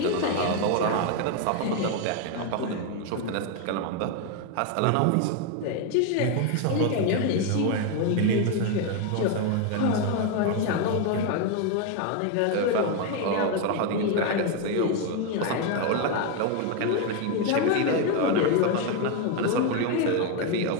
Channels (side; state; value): both; different; correlation 0.01